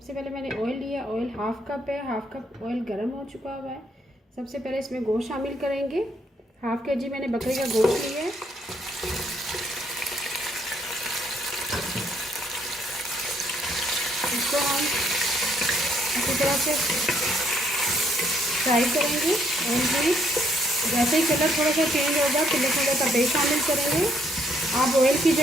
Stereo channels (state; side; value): normal; both; correlation 0.69